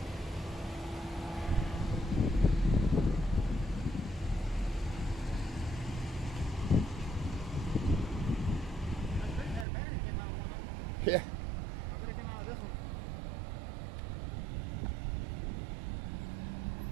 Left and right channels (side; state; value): left; drops out; at 9.7 s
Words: Yeah. I'm gonna come out of this